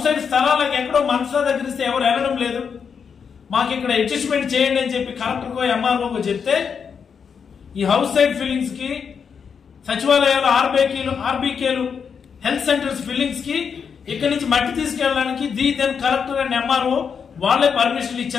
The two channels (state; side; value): quieter; right; 6.5 dB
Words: సైడ్ స్థలాలకు ఎక్కడో మనసులో దగ్గర ఇస్తే ఎవరు వెళ్ళడం లేదు, మాకు ఇక్కడ అడ్జస్ట్మెంట్ చేయండి అని చెప్పి కలెక్టర్కో ఎంఆర్ఓకో చెప్తే ఈ హౌస్ సైడ్ ఫిల్లింగ్స్ కి, సచివాలయాలు ఆర్బీకేలు, హెల్త్ సెంటర్స్ ఫిల్లింగ్స్ కి ఇక్కడి నుంచి మట్టి తీసుకెళ్ళడానికి దెన్ కలెక్టర్ అండ్ ఎంఆర్ఓ వాళ్ళే పర్మిషన్